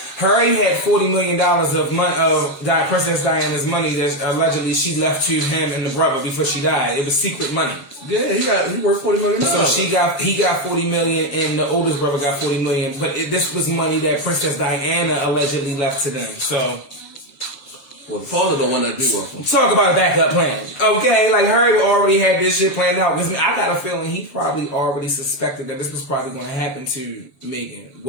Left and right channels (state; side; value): late; right; 7.1 ms